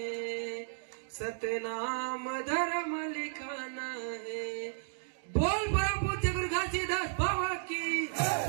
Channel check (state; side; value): silent; left; digital silence